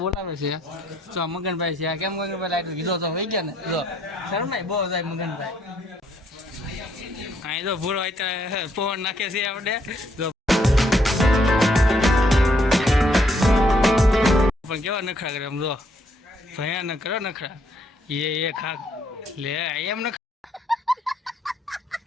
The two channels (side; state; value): both; normal; correlation 0.70